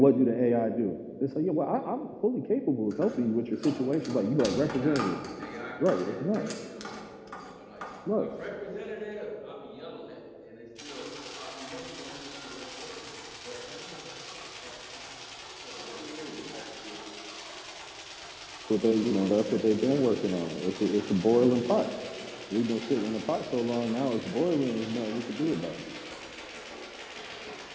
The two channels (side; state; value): both; identical; correlation 1.00